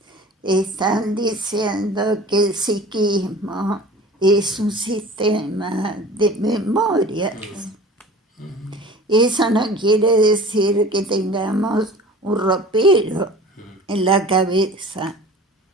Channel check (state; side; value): normal; both; correlation 0.41